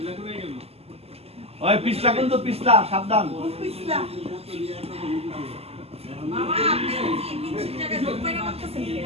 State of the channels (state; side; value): late; left; 0.29 ms